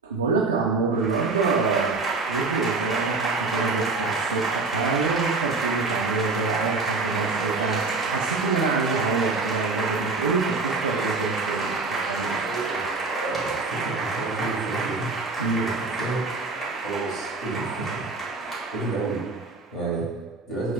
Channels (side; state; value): left; quieter; 3.8 dB